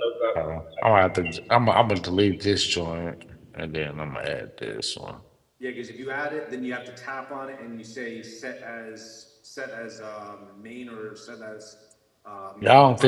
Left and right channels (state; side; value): identical; both; correlation 1.00